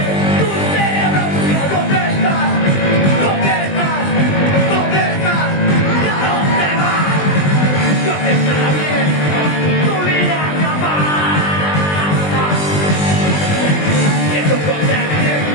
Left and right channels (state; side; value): late; right; 20 ms